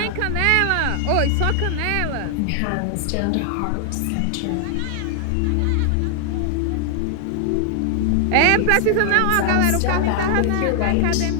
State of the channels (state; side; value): different; both; correlation 0.00